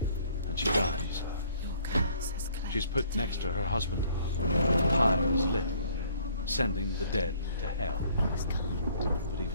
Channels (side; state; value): both; inverted; correlation -0.60